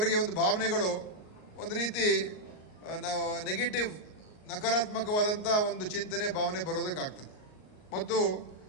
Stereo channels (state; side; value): late; right; 38 ms